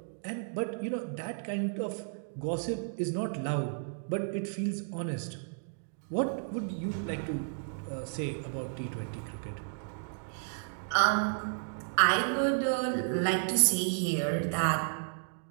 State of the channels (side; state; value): left; silent; digital silence